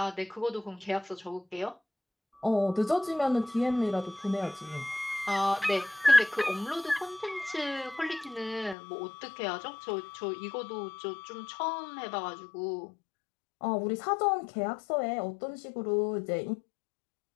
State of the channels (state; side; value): drops out; right; at 8.8 s